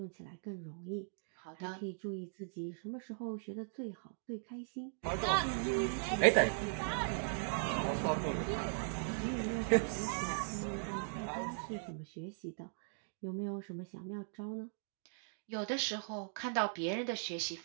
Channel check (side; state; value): left; silent; digital silence